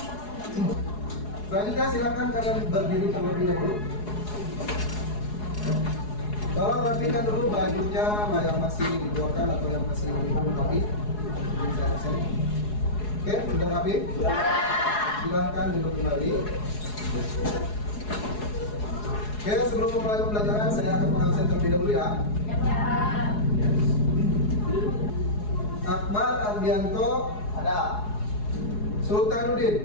Selanjutnya silakan kalian berdiri terlebih dahulu. Tolong rapikan dulu bajunya yang masih dikeluarkan atau yang masih belum rapi. Oke, sudah rapi? Silahkan duduk kembali. Oke, sebelum memulai pembelajaran saya akan mengabsen terlebih dahulu ya. Akbar Ardianto Ada.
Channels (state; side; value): late; right; 4.8 ms